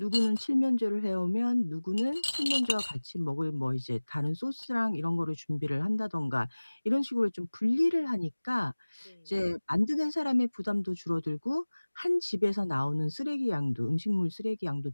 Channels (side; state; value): both; inverted; correlation -1.00